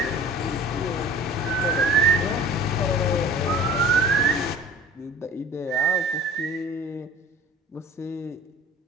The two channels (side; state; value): both; normal; correlation 0.43